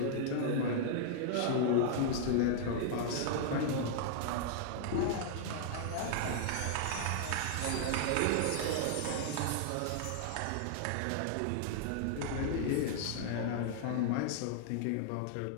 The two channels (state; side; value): different; both; correlation -0.01